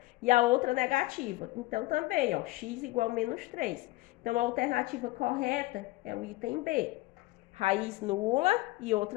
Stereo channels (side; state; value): right; quieter; 19.8 dB